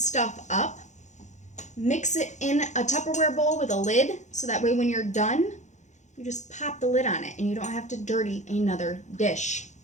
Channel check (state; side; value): late; right; 0.34 ms